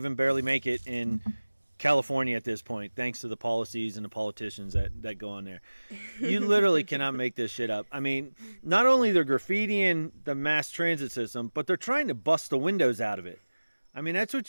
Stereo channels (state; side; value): inverted; both; correlation -1.00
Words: barely make it in California at this point, thanks to the policies and the politicians that go on there. You literally cannot make this shit up. I mean, not only they're graffitiing the mass transit system, but they're trying to bust the windows out of it. I mean, that's